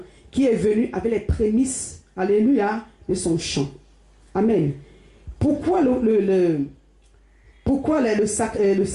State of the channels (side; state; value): both; identical; correlation 1.00